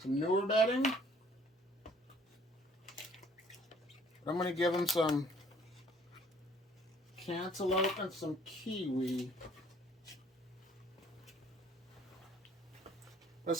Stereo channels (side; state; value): both; normal; correlation 0.58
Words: newer bedding. I'm going to give them some cantaloupe and some kiwi. I